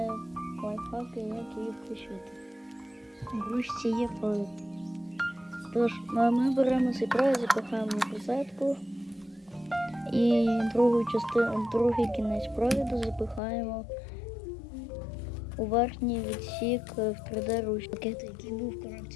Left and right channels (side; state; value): right; drops out; at 13.4 s